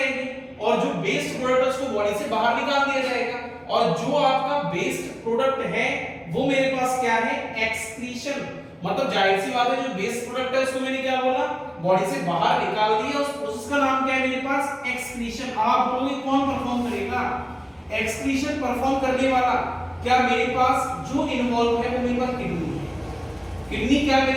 और जो वेस्ट प्रोडक्ट है उसको बॉडी से बाहर निकाल दिया जाएगा, और जो आपका वेस्ट प्रोडक्ट है वो मेरे पास क्या है, एक्सक्रीशन। मतलब जाहिर सी बात है जो वेस्ट प्रोडक्ट है उसको मैंने क्या बोला, बॉडी से बाहर निकाल दिया। उस प्रोसेस का नाम क्या है मेरे पास, एक्सक्रीशन। आप बोलोगे कौन परफॉर्म करेगा, एक्सक्रीशन परफॉर्म करने वाला क्या मेरे पास जो इन्वॉल्व है वो मेरे पास किडनी है। किडनी क्या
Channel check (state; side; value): identical; both; correlation 1.00